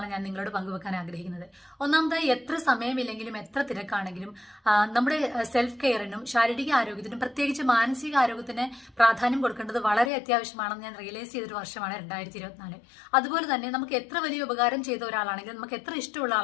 ഞാൻ നിങ്ങളോട് പങ്കുവെക്കാൻ ആഗ്രഹിക്കുന്നത്. ഒന്നാമതായി, എത്ര സമയമില്ലെങ്കിലും എത്ര തിരക്കാണെങ്കിലും നമ്മുടെ സെൽഫ് കെയറിനും ശാരീരിക ആരോഗ്യത്തിനും പ്രത്യേകിച്ച് മാനസിക ആരോഗ്യത്തിന് പ്രാധാന്യം കൊടുക്കേണ്ടത് വളരെ അത്യാവശ്യമാണെന്ന് ഞാൻ റിയലൈസ് ചെയ്തൊരു വർഷമാണ് 2024. അതുപോലെ തന്നെ നമുക്ക് എത്ര വലിയ ഉപകാരം ചെയ്ത ഒരാളാണെങ്കിലും നമുക്ക് എത്ര ഇഷ്ടമുള്ള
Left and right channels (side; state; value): right; drops out; at 10.1 s